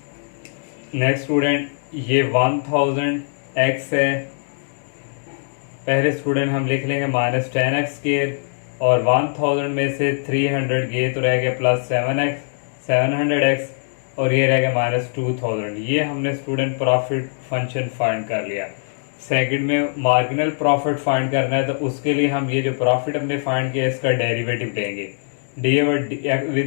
Next student ये 1000x है, पहले स्टूडेंट हम लिख लेंगे माइनस 10x स्केयर, और 1000 में से 300 ये तो रह गया प्लस 700x, और ये रह गया माइनस 2000। ये हमने स्टूडेंट प्रॉफिट फंक्शन फाइंड कर लिया। सेकंड में मार्जिनल प्रॉफिट फाइंड करना है, तो उसके लिए हम ये जो प्रॉफिट हमने फाइंड किया इसका डेरिवेटिव लेंगे, D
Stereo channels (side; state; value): right; silent; digital silence